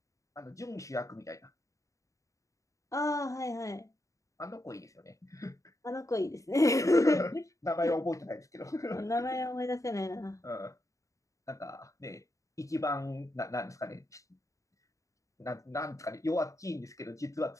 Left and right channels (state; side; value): late; right; 0.16 ms